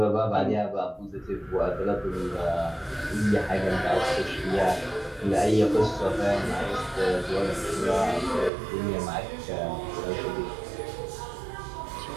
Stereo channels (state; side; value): drops out; left; at 8.5 s